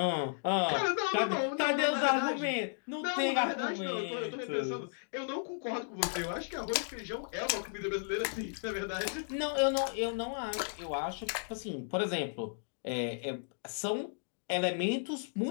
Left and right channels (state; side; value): silent; right; digital silence